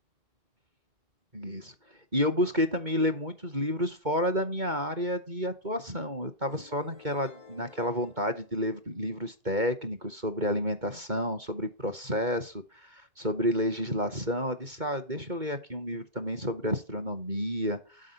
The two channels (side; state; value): left; late; 2.2 ms